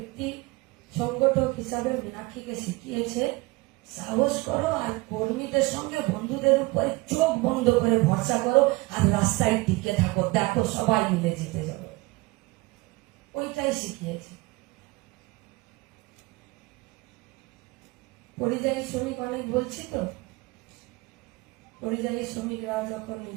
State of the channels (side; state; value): left; quieter; 23.1 dB